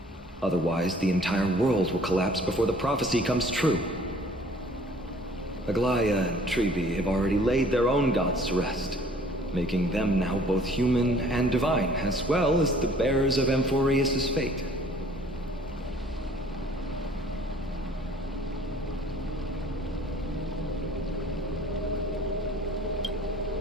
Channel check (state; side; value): normal; both; correlation 0.54